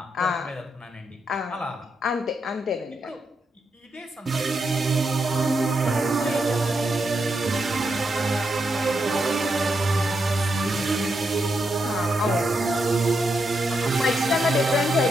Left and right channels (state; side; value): normal; both; correlation 0.83